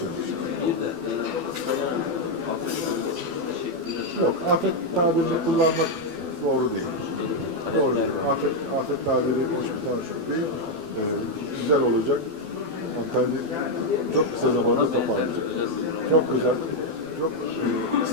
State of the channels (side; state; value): left; late; 12 ms